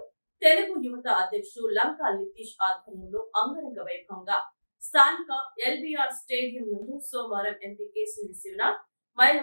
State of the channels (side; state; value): both; inverted; correlation -1.00